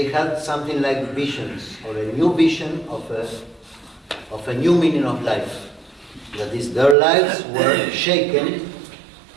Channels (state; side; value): drops out; left; at 7.0 s